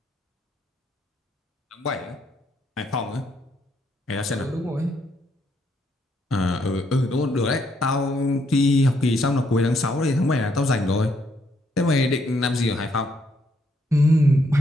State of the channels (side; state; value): both; normal; correlation 0.73